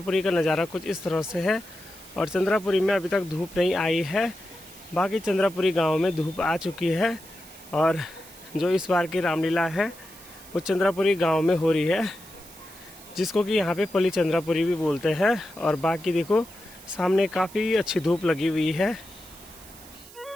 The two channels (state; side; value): noise; right; hiss, 20 dB below the sound